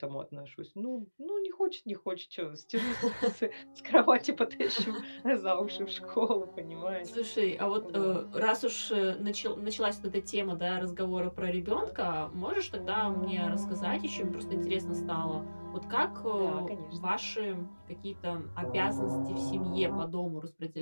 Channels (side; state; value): both; inverted; correlation -1.00